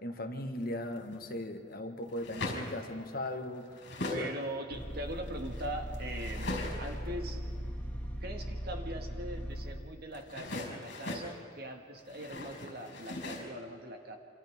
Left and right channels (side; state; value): both; normal; correlation 0.44